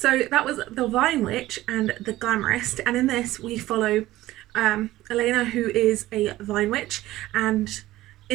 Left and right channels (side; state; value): left; quieter; 16.2 dB